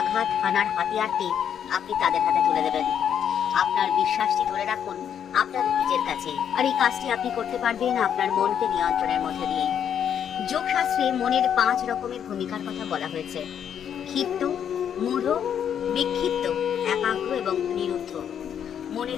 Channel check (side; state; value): right; quieter; 8.7 dB